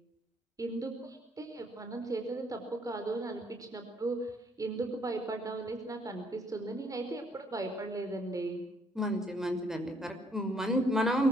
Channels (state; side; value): normal; both; correlation 0.67